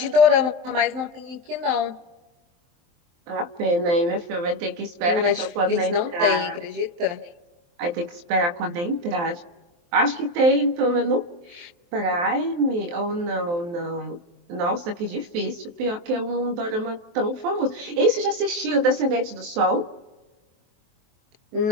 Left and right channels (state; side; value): late; left; 23 ms